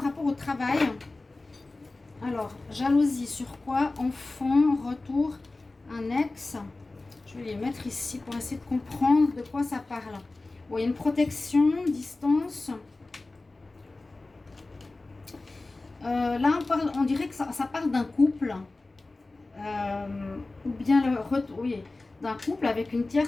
rapport au travail. Alors, jalousie sur quoi? Enfant, retour, un ex. Je vais les mettre ici pour essayer de comprendre de quoi ça parle. Bon, il y a une protection, distance. Là, on dirait que ça parle d'un couple. Ou bien le retour, oui, d'un couple avec une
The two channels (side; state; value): right; quieter; 3.2 dB